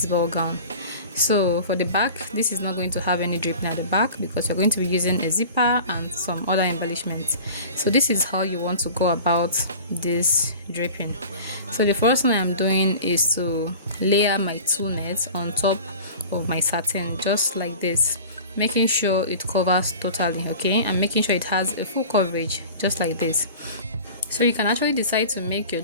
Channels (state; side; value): inverted; both; correlation -0.39